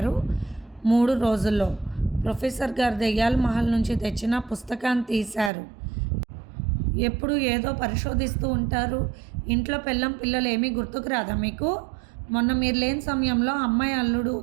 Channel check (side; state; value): left; drops out; at 5.5 s